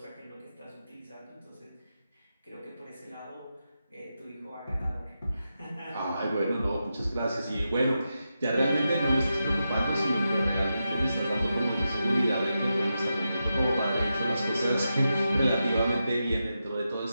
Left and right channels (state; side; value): inverted; both; correlation -0.88